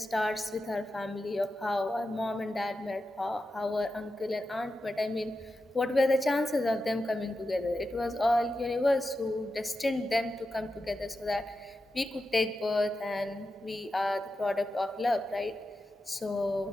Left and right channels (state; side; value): normal; both; correlation 0.90